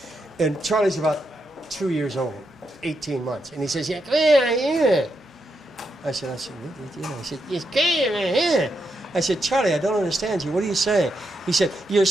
And Charlie's about 2 years old, 18 months. And he says, yeah, come here. I said, what are you doing? He said, yes, come here. I said, Charlie, I don't understand you. What are you saying? He said, you're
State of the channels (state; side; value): normal; both; correlation 0.82